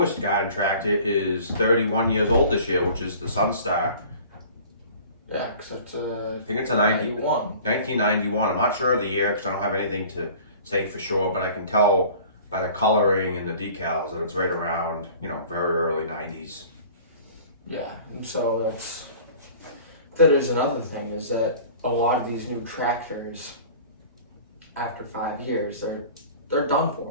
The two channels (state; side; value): inverted; both; correlation -0.45